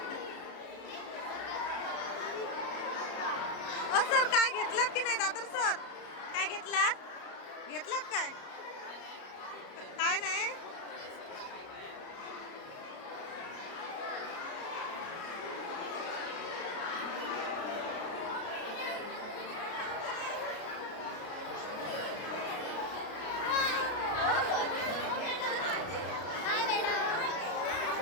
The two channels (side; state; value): right; late; 33 ms